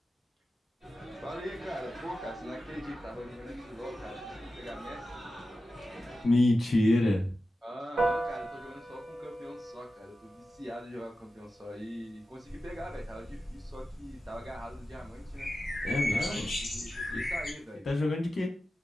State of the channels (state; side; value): normal; both; correlation 0.93